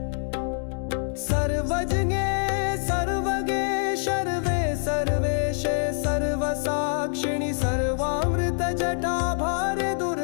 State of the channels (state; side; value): silent; right; digital silence